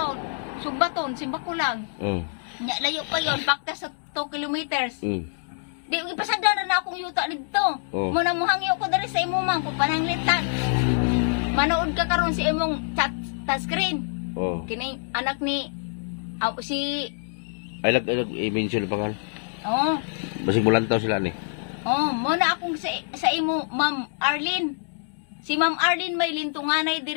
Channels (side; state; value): right; silent; 61 dB below the other